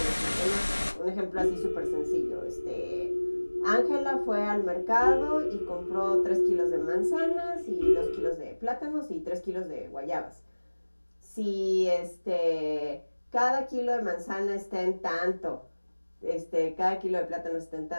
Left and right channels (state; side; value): inverted; both; correlation -1.00